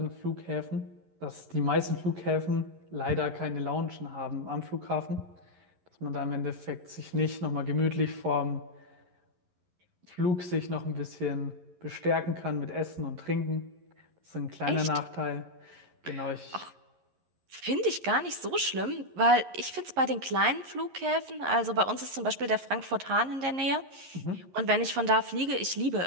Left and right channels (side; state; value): left; late; 11 ms